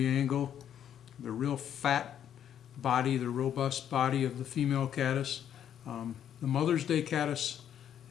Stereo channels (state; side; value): quieter; right; 9.7 dB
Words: angle, the real fat body, the robust body of the female caddis. The Mother's Day caddis,